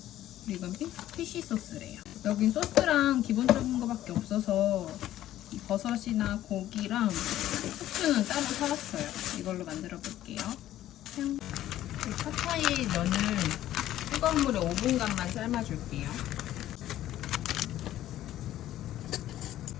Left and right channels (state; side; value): quieter; right; 13.3 dB